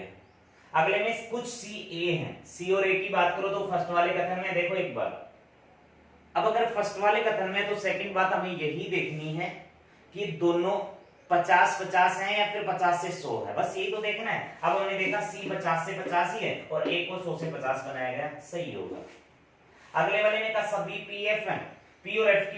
अगले में कुछ सी ए हैं, सी और ए की बात करो तो फर्स्ट वाले कथन में देखो एक बार, अब अगर फर्स्ट वाले कथन में तो सेकंड बात हमें यही देखनी है कि दोनों 50-50 हैं या फिर 50 से 100 है, बस यही तो देखना है। अब हमने देखा सी 50 से 50 ही है और ए को 100 से 50 बनाया गया, सही होगा। अगले वाले में कहा सभी पीएफ हैं, पी और एफ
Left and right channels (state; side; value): identical; both; correlation 1.00